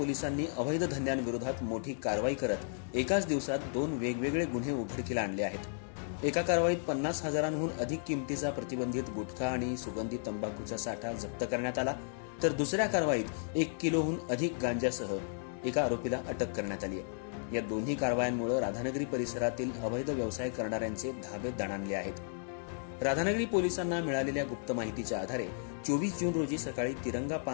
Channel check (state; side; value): silent; right; digital silence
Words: अवैध धंद्यांविरोधात मोठी कारवाई करत एकाच दिवसात 2 वेगवेगळे गुन्हे उघडकीला आणले आहेत. एका कारवाईत 50,000हून अधिक किमतीचा प्रतिबंधित गुटखा आणि सुगंधी तंबाखूचा साठा जप्त करण्यात आला, तर दुसऱ्या कारवाईत 1 किलोहून अधिक गांजासह एका आरोपीला अटक करण्यात आली आहे. या दोन्ही कारवायांमुळे राधानगरी परिसरातील अवैध व्यवसाय करणाऱ्यांचे धाबे दणाणले आहेत. राधानगरी पोलिसांना मिळालेल्या गुप्त माहितीच्या आधारे 24 जून रोजी सकाळी तिरंगा